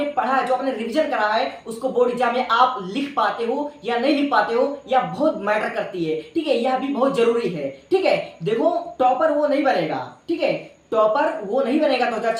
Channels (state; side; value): identical; both; correlation 1.00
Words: पढ़ा है, जो आपने रिवीजन करा है, उसको बोर्ड एग्जाम में आप लिख पाते हो या नहीं लिख पाते हो, या बहुत मैटर करती है। ठीक है, यह भी बहुत जरूरी है। ठीक है, देखो, टॉपर वो नहीं बनेगा, ठीक है, टॉपर वो नहीं बनेगा